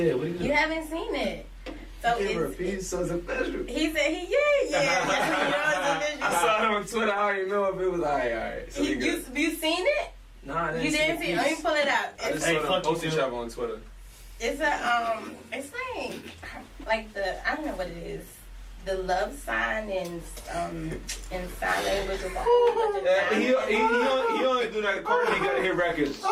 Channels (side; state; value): both; identical; correlation 1.00